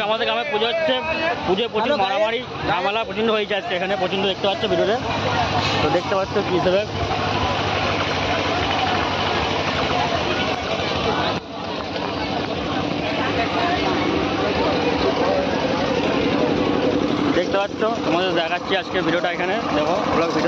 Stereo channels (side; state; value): both; identical; correlation 1.00